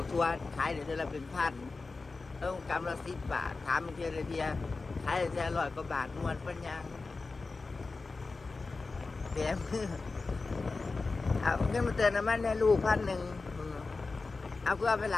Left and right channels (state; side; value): quieter; right; 3.9 dB